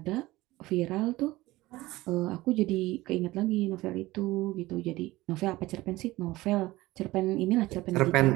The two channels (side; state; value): left; quieter; 18.6 dB